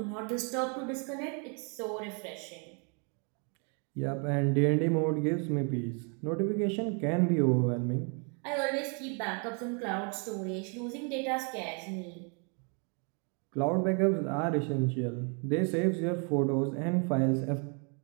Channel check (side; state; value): left; quieter; 37.7 dB